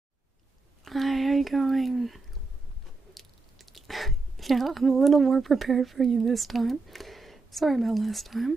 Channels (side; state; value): left; quieter; 3.6 dB